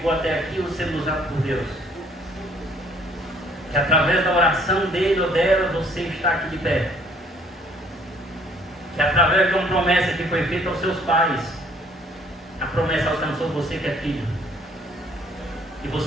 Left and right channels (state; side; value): normal; both; correlation 0.60